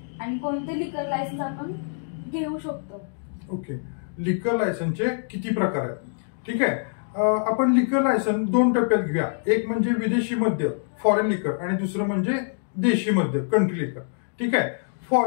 आणि कोणते लिकर लायसन्स आपण घेऊ शकतो? ओके, लिकर लायसन्सचे किती प्रकार आहेत? ठीक आहे, आपण लिकर लायसन्स 2 टप्प्यात घेऊया। एक म्हणजे विदेशी मद्य फॉरेन लिकर आणि दुसरं म्हणजे देशी मद्य कंट्री लिकर। ठीक आहे,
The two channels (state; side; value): silent; right; digital silence